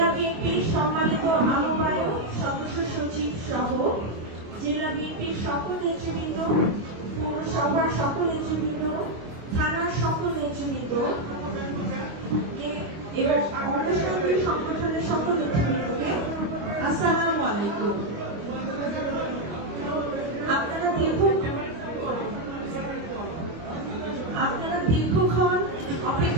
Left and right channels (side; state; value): left; late; 25 ms